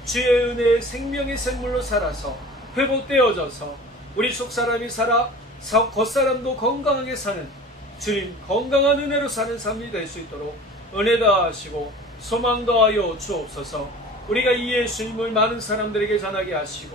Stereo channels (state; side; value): normal; both; correlation 0.41